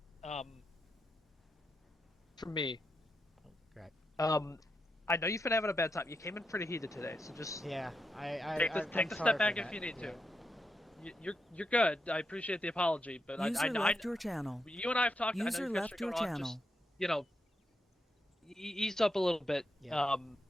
for me, I know you've been having a bad time. You came in pretty heated today, so just take the step back if you need to. You're good. I appreciate the apology, but User left your channel. You and I have talked. User I know left your channel. Just, ease up a little bit.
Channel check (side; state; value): both; normal; correlation 0.84